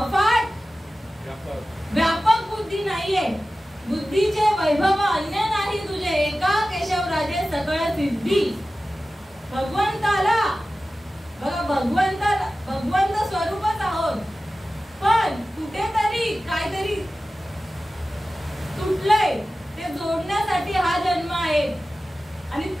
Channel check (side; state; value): both; normal; correlation 0.95